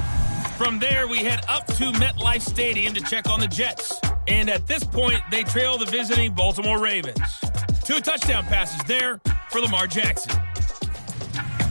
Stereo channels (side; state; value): both; inverted; correlation -1.00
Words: From there, we head up to MetLife Stadium to check on the Jets. And at this point, they trail the visiting Baltimore Ravens. 2 touchdown passes there for Lamar Jackson.